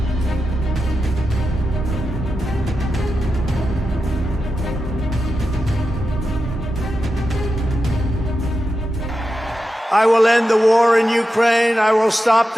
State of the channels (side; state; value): both; normal; correlation 0.90